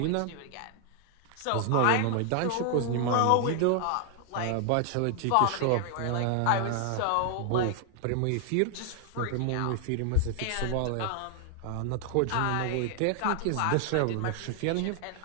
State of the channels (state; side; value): different; both; correlation 0.00